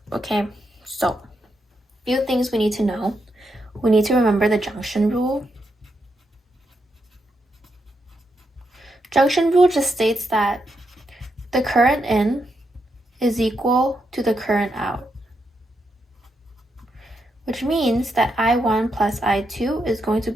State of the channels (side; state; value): both; normal; correlation 0.82